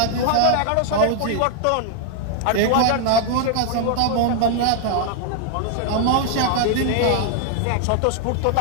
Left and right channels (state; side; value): different; both; correlation 0.00